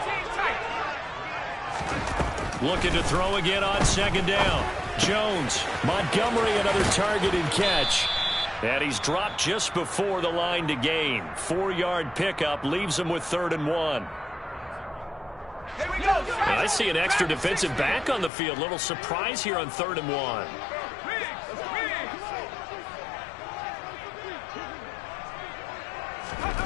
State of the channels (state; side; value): drops out; right; at 18.3 s